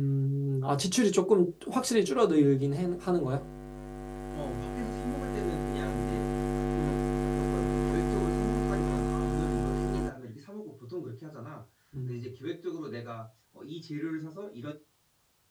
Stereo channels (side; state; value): both; identical; correlation 1.00